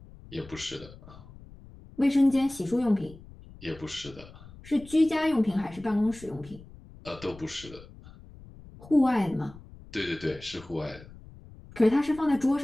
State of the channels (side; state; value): left; noise; rumble, 19 dB below the sound